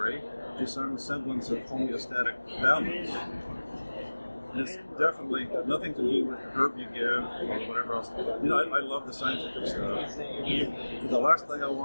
to some semblance of homeostatic balance? And it's definitely nothing to do with the herb you give or whatever else. You know, I love the scientific stuff. The last thing I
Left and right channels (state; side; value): inverted; both; correlation -1.00